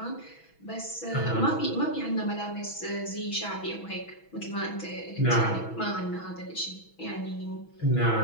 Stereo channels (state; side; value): late; right; 6.1 ms